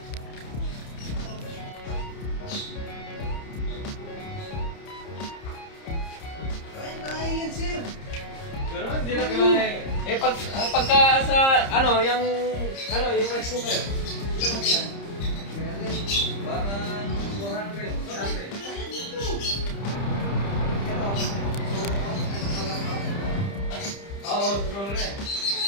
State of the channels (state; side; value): late; right; 30 ms